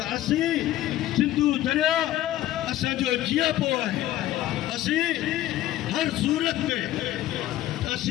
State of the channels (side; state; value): right; quieter; 14.1 dB